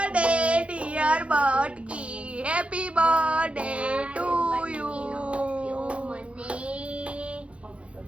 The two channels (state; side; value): late; left; 0.061 ms